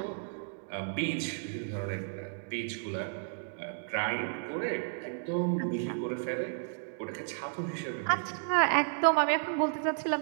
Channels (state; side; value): silent; left; digital silence